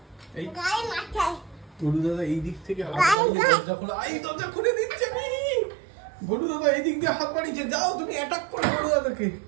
গলু দাদা এই দিক থেকে হাত বাড়িয়ে দরজা খোলা, এই দরজা খুলে দিচ্ছে। গলু দাদা এই দিক দিয়ে হাত বাড়িয়েছে, যাও তুমি অ্যাটাক করো গলু দাদাকে।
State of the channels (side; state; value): left; drops out; at 3.2 s